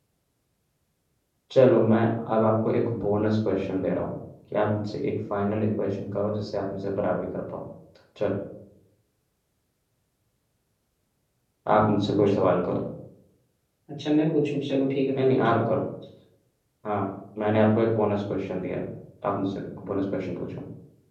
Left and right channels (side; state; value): both; identical; correlation 1.00